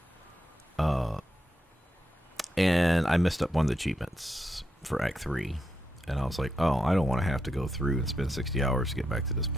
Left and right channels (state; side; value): normal; both; correlation 0.84